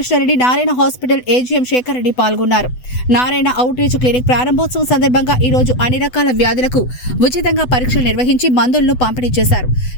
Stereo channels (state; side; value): late; right; 8.0 ms